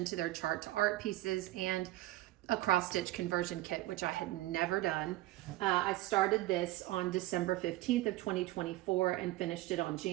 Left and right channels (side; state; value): left; quieter; 17.2 dB